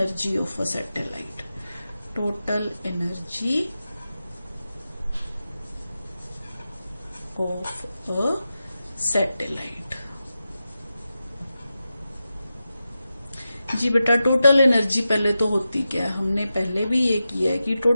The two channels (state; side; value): inverted; both; correlation -0.91